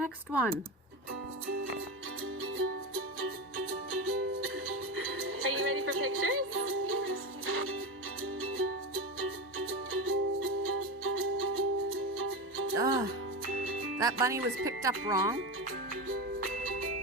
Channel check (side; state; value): both; normal; correlation 0.20